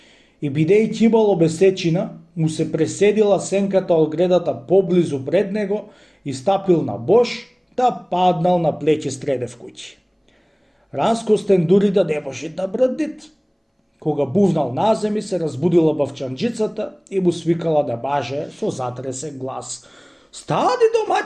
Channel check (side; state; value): both; identical; correlation 1.00